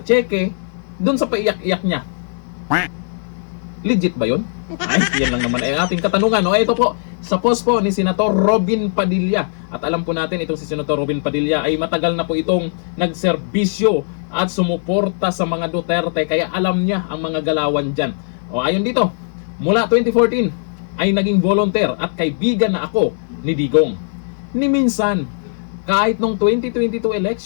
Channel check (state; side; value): silent; right; digital silence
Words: cheque, doon sa paiyak-iyak niya. Legit ba yun? Ay, yan lang naman ay ating katanungan. O ito po, sa post po ni Senator Robin Padilla. At alam po natin itong si Senator Robin Padilla ay matagal na po itong nagserbisyo at sumuporta sa mga Duterte, kaya alam niya ang mga galawan dyan. O ayon dito, mula 2014 ay naging volunteer at kaibigan na ako ni Digong. Ni minsan, kahit nung 2022